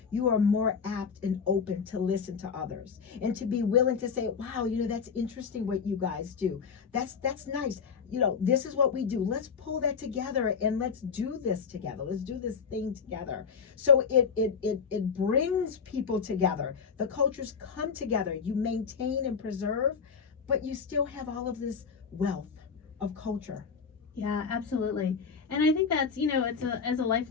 more apt and open to listen to others and to be willing to say, wow, you know, that's interesting what you guys do. That's nice. You know, this is what we do. Let's pull that together and let's do this together. Let's do this thing together. So it brings people together. The cultures come together. You maintain and preserve, but you still have all of this wealth of culture. Yeah, absolutely. And I think that's, you know, it's as a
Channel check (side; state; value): right; quieter; 6.1 dB